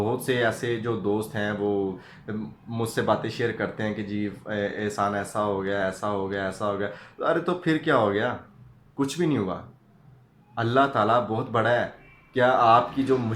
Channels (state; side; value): identical; both; correlation 1.00